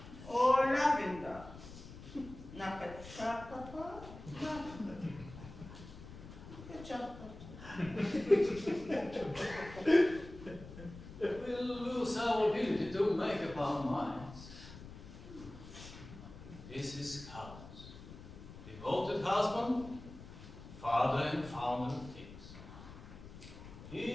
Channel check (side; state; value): left; noise; rumble, 15 dB below the sound